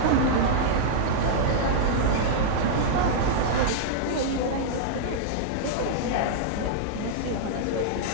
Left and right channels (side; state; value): both; different; correlation -0.02